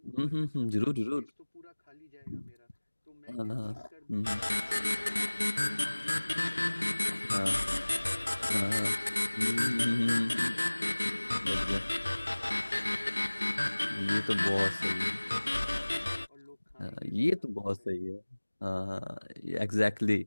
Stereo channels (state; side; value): inverted; both; correlation -1.00